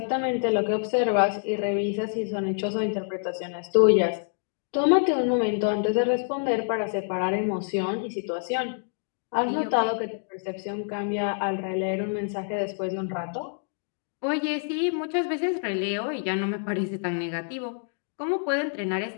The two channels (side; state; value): right; silent; digital silence